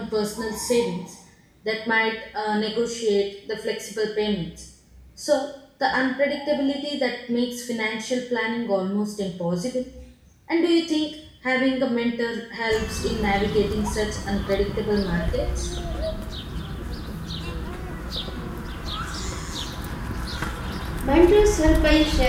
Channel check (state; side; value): identical; both; correlation 1.00